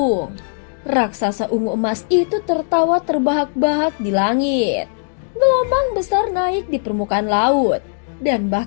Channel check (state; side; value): silent; right; digital silence